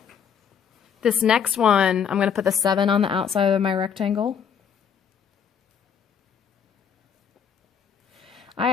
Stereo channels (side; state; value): right; quieter; 7.5 dB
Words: This next one, I'm going to put the 7 on the outside of my rectangle. I